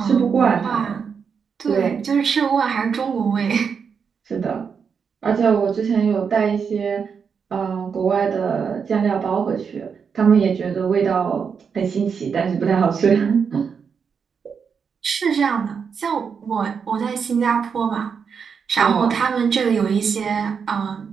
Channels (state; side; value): quieter; left; 6.3 dB